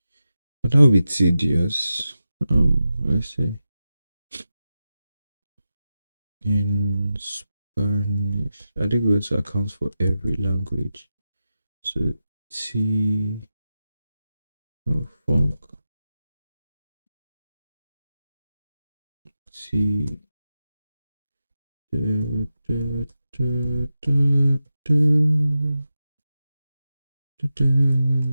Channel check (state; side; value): inverted; both; correlation -0.92